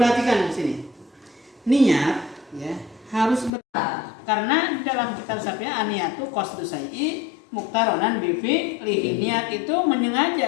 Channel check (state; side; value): drops out; right; at 3.5 s